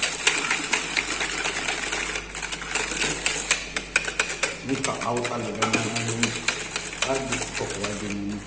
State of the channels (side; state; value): both; identical; correlation 1.00